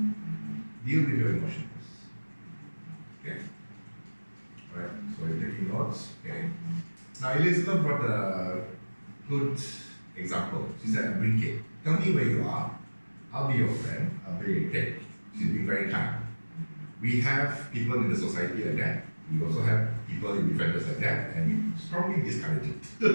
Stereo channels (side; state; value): both; inverted; correlation -1.00